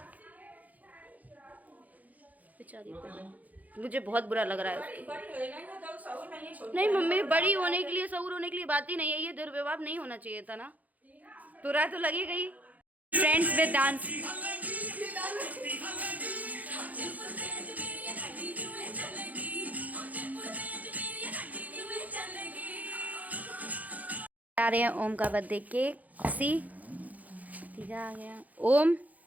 बेचारी मुझे बहुत बुरा लग रहा है। नहीं मम्मी, बड़ी होने के लिए, सऊर होने के लिए बात ही नहीं है। ये दुर्व्यवहार नहीं होना चाहिए था ना। बुरा तो लगी गई। Friends with dance. आ रहे हैं ओम का बर्थडे केक। ठीक है, आ गया ओम।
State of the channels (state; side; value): late; left; 0.078 ms